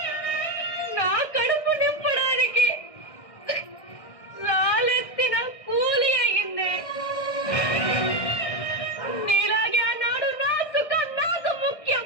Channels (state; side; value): late; right; 1.6 ms